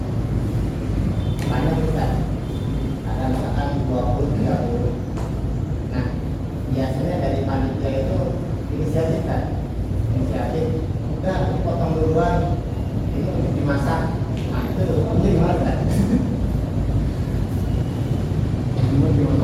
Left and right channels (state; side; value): identical; both; correlation 1.00